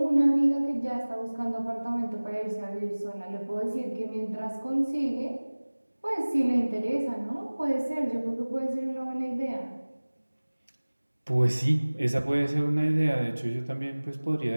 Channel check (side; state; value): both; inverted; correlation -1.00